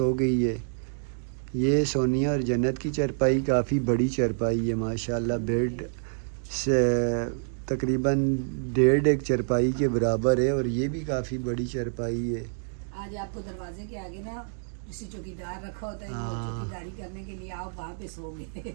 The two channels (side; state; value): left; silent; digital silence